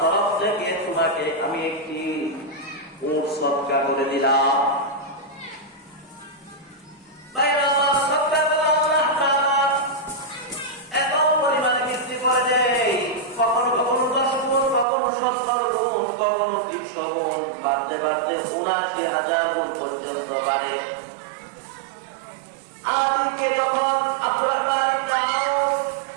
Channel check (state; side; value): drops out; left; at 14.9 s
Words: তরফ থেকে তোমাকে আমি একটি উট সদকা করে দিলাম। বাইরে সদকা করে আল্লাহ তাআলা এত পরিমাণে বৃদ্ধি করে দেয়, কখনো কখনো 10 গুণ, কখনো 70 গুণ, কখনো 300 গুণ, বাড়তে বাড়তে ৭৯,০০০ গুণ পর্যন্ত বাড়ে। আদিকে যখন আব্দুর রহমান ইবনে আউফ